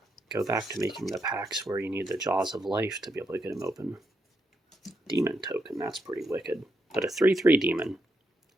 go back to making the packs where you need the Jaws of Life to be able to get them open. Demon Token, that's pretty wicked. But a 3/3 demon.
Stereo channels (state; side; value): normal; both; correlation 0.81